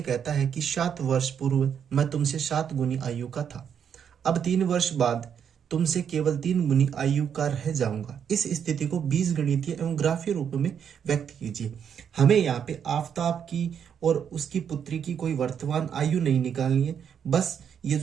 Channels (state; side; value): quieter; left; 8.0 dB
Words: कहता है कि 7 वर्ष पूर्व मैं तुमसे 7 गुनी आयु का था। अब 3 वर्ष बाद तुमसे केवल 3 गुनी आयु का रह जाऊंगा। इस स्थिति को बीजगणितीय एवं ग्राफीय रूप में व्यक्त कीजिए। हमें यहाँ पे आफ्ताब की और उसकी पुत्री की कोई वर्तमान आयु नहीं निकालनी है। बस ये